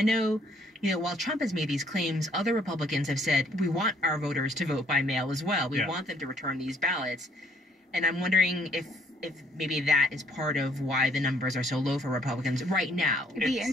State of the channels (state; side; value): normal; both; correlation 0.64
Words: know, while Trump has made these claims, other Republicans have said, we want our voters to vote by mail as well. We want them to return these ballots. And I'm wondering if maybe that is part of why the numbers are so low for Republicans right now. It'd be